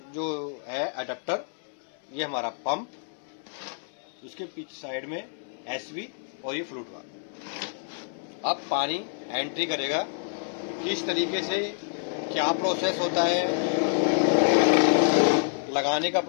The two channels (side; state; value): right; silent; digital silence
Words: जो है अडेप्टर, ये हमारा पंप, उसके पीछे साइड में एसवी और ये फ्लूट वाल्व। अब पानी एंट्री करेगा किस तरीके से, क्या प्रोसेस होता है, लगाने का